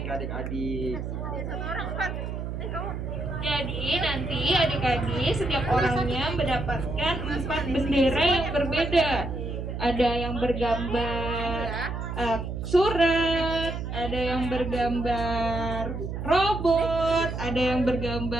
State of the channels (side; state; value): right; noise; hum, 5 dB below the sound